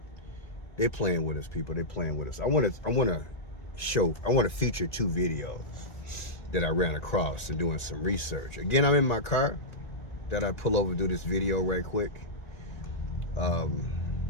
They're playing with us, people. They're playing with us. I want to feature two videos that I ran across and doing some research. Again, I'm in my car. That I pull over, do this video right quick. One,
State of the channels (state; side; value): late; right; 1.7 ms